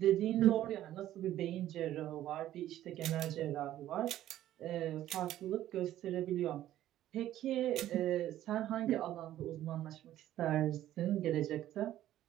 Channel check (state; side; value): quieter; left; 13.1 dB